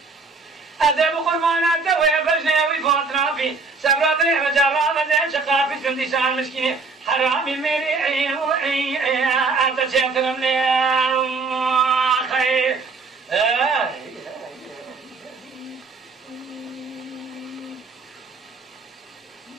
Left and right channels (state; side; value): quieter; left; 4.2 dB